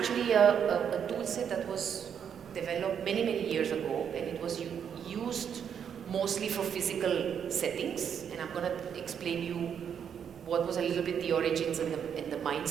a tool set that was developed many, many years ago, and it was used mostly for physical settings. And I'm going to explain you what was a little bit the origins and the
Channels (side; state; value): left; quieter; 8.0 dB